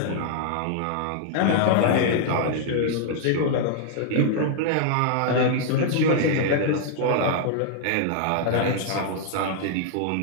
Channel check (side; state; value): both; different; correlation -0.01